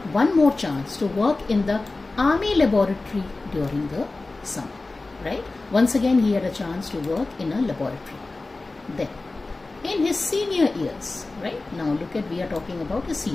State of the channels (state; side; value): quieter; right; 3.3 dB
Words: one more chance to work in the Army laboratory during the summer, right? Once again, he had a chance to work in a laboratory. Then, in his senior years, right? Now look at, we are talking about his